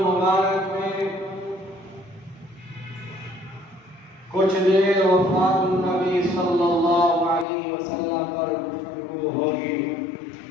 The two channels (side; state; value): right; drops out; at 7.5 s